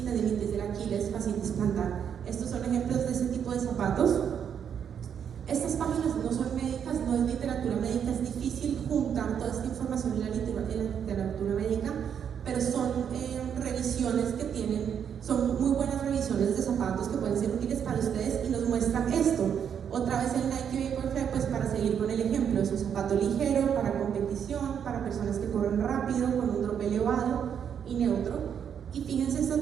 tendinitis del Aquiles, fascitis plantar. Estos son ejemplos de ese tipo de zapatos. Estas páginas no son médicas, no es literatura médica, es difícil juntar toda esta información en ligero, para competición, para personas que corren rápido, con un drop elevado y neutro. Y fíjense, este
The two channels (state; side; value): quieter; left; 8.1 dB